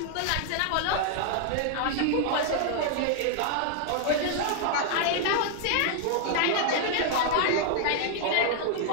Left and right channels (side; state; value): both; different; correlation 0.00